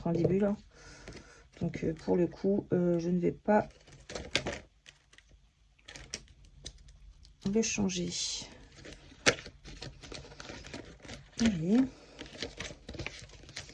en début là. Donc pour le coup, je ne vais pas le changer. Allez.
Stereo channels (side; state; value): both; identical; correlation 1.00